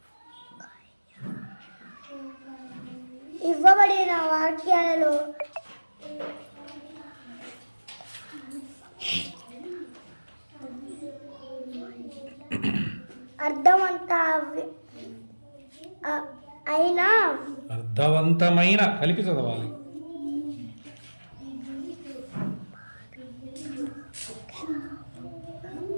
ఇవ్వబడిన వాక్యాలలో అర్థవంతమైన కలిపి చదవాలి.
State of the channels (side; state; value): both; inverted; correlation -1.00